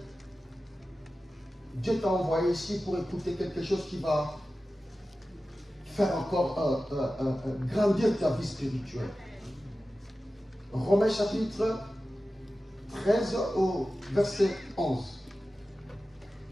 Dieu t'a envoyé ici pour écouter quelque chose qui va faire encore grandir ta vie spirituelle. Romains chapitre 13 au verset 11.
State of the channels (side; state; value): both; normal; correlation 0.94